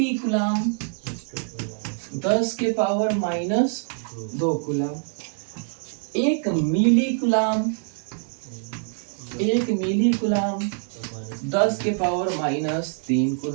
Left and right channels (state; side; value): silent; left; 61 dB below the other